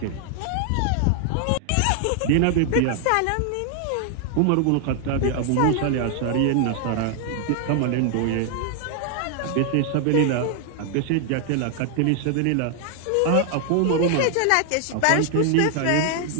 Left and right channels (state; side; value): different; both; correlation 0.00